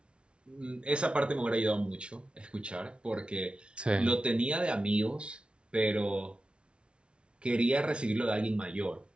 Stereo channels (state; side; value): late; left; 0.058 ms